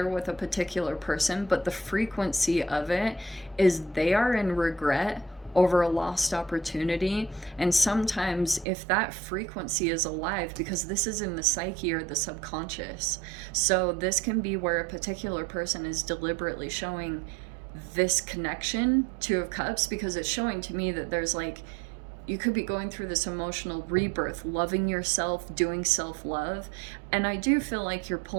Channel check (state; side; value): drops out; left; at 8.7 s